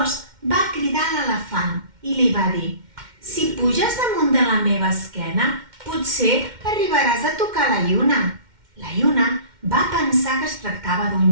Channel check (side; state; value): left; late; 2.1 ms